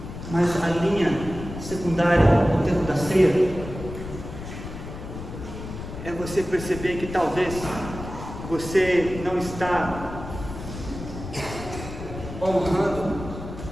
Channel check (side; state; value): left; noise; rumble, 10 dB below the sound